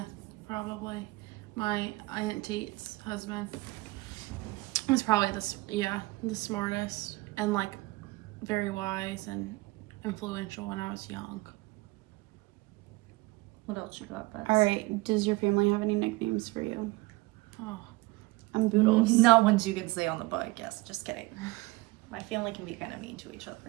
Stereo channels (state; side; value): quieter; left; 22.0 dB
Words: probably. My Aunt Teet's husband was probably the smartest and like very wise and influential when I was young. what else you got, Bets? All right. Does your family have any nicknames for you? Oh, I'm Boodles. Not ones you can say on the podcast. Just kidding. My family can be kind of mean to each other.